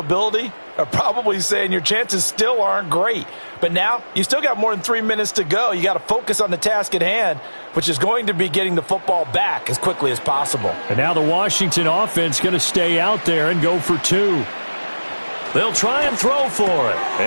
are probably saying your chances still aren't great. But now, you still got more than 3 minutes to go. You got to focus on the task at hand, which is going to be getting the football back as quickly as possible. And now the Washington offense going to stay out there and go for 2. They'll try and throw for it.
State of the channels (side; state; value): both; inverted; correlation -1.00